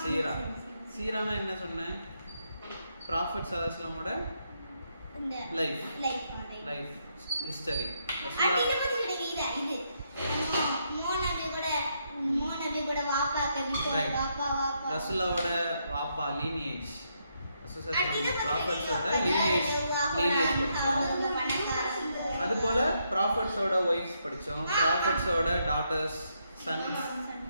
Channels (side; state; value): both; inverted; correlation -0.78